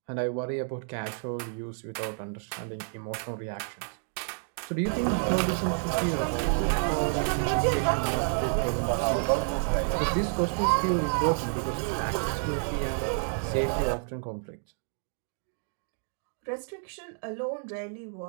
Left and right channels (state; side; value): silent; left; 58 dB below the other